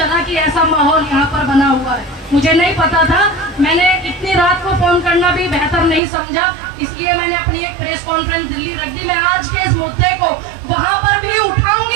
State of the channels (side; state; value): left; drops out; at 6.0 s